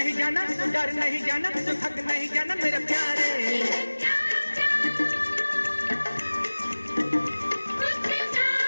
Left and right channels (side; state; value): both; inverted; correlation -1.00